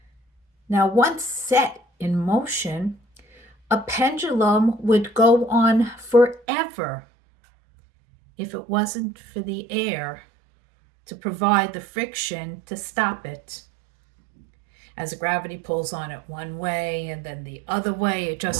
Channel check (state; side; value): drops out; left; at 6.4 s